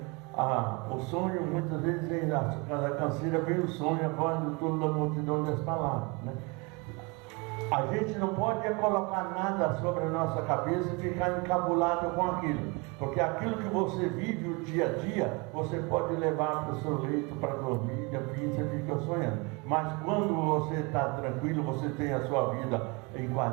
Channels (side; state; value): left; quieter; 28.5 dB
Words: o sonho, muitas vezes vem da canseira, vem o sonho, quando toda a multidão das palavras, né? A gente não pode colocar nada sobre a nossa cabeça e ficar encabulado com aquilo, porque aquilo que você vive o dia a dia, você pode levar para o seu leito para dormir, e assim você fica sonhando. Mas quando você está tranquilo, você tem a sua vida